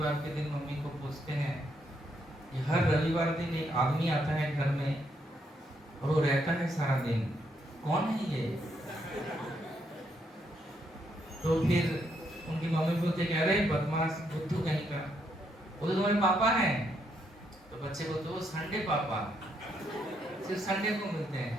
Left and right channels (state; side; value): normal; both; correlation 0.76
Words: के दिन मम्मी को पूछते हैं कि हर रविवार दिन एक आदमी आता है घर में और वो रहता है सारा दिन, कौन है ये? तो फिर उनकी मम्मी बोलते कह रहे बदमाश बुद्धू कहीं का, वो तो तुम्हारे पापा हैं। तो बच्चे बोलते वो संडे पापा, सिर्फ संडे को मिलते